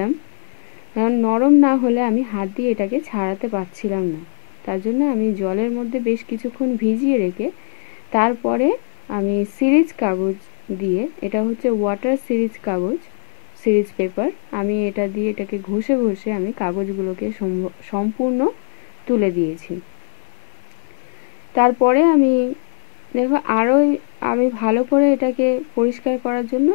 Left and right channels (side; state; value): right; silent; digital silence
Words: কারণ নরম না হলে আমি হাত দিয়ে এটাকে ছাড়াতে পারছিলাম না। তার জন্য আমি জলের মধ্যে বেশ কিছুক্ষণ ভিজিয়ে রেখে তারপরে আমি সিরিজ কাগজ দিয়ে, এটা হচ্ছে ওয়াটার সিরিজ কাগজ, সিরিজ পেপার, আমি এটা দিয়ে এটাকে ঘষে ঘষে আমি কাগজগুলোকে সম্পূর্ণ তুলে দিয়েছি। তারপরে আমি দেখো আরও আমি ভালো করে এটাকে পরিষ্কার করার জন্য